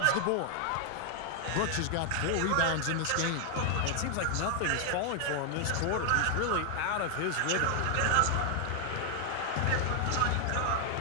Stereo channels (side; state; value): both; different; correlation 0.00